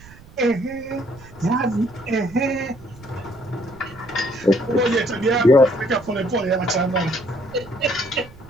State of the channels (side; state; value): right; noise; rumble, 21 dB below the sound